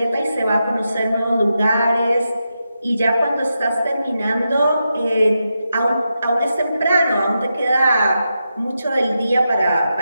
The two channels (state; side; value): inverted; both; correlation -0.87